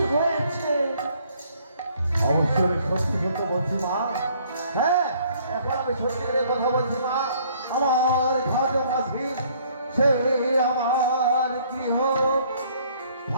হয়েছে? অবশ্যই আমি সত্যি সত্য বলছি মা। হ্যাঁ, এখন আমি সত্যি করে কথা বলছি মা। আমার ঘাটো মাঝি সেই আমার গৃহ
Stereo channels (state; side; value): inverted; both; correlation -0.61